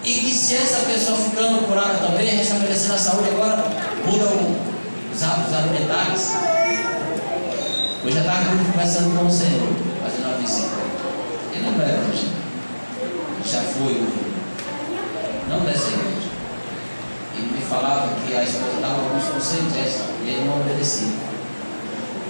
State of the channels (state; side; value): inverted; both; correlation -1.00